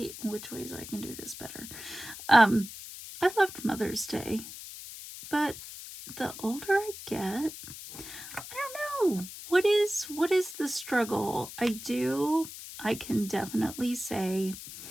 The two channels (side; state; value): left; noise; hiss, 12 dB below the sound